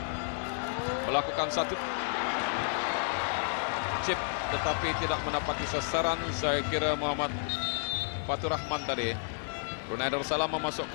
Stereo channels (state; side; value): silent; right; 57 dB below the other